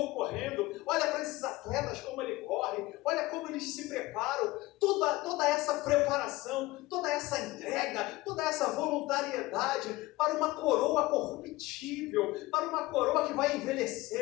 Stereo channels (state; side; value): quieter; right; 19.4 dB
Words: correndo, olha para esses atletas como ele corre, olha como eles se preparam, toda essa preparação, toda essa entrega, toda essa voluntariedade para uma coroa corruptível, para uma coroa que vai